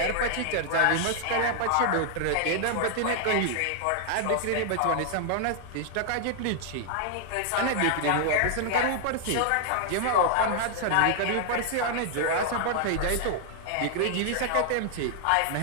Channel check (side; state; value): both; different; correlation 0.00